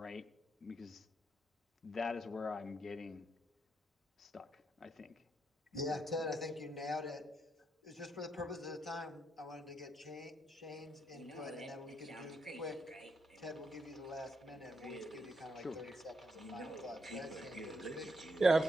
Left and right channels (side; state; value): both; normal; correlation 0.79